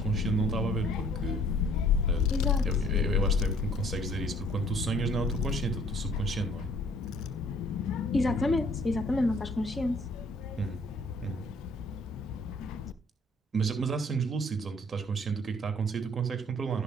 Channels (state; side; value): normal; both; correlation 0.59